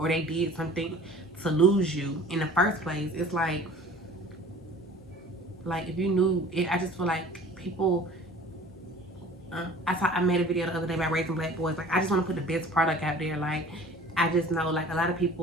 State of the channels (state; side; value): normal; both; correlation 0.46